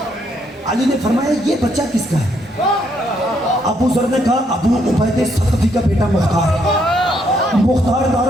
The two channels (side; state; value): both; normal; correlation 0.72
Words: अली ने फरमाया ये बच्चा किसका है? अबू ज़र ने कहा अबू उबैद सक़फ़ी का बेटा मुख्तार। मुख्तार